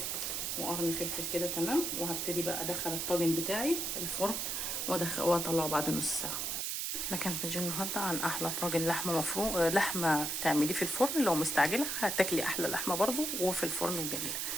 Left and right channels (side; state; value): right; noise; hiss, 1 dB below the sound